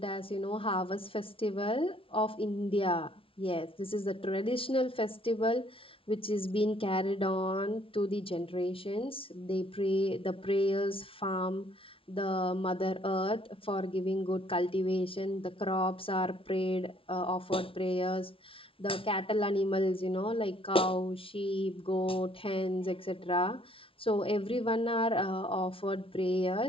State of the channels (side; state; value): right; late; 0.26 ms